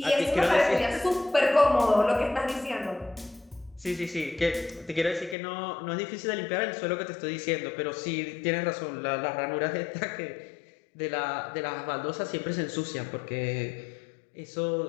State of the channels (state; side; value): drops out; right; at 5.4 s